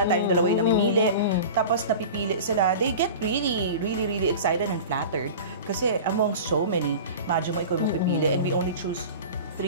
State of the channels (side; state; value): both; inverted; correlation -0.34